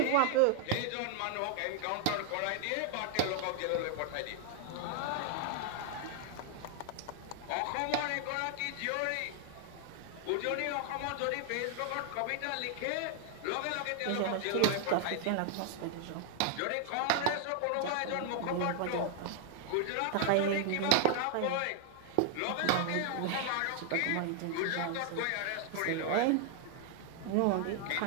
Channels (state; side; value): different; both; correlation 0.00